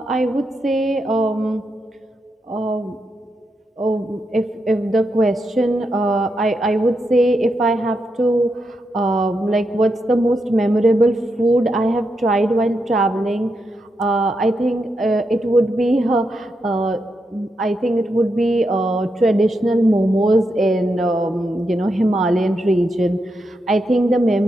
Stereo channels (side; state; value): both; normal; correlation 0.84